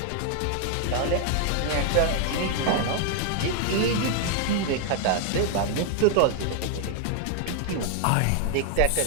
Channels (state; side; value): different; both; correlation 0.00